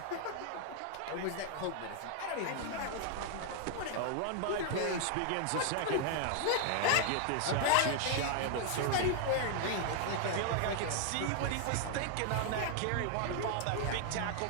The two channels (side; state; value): both; different; correlation 0.00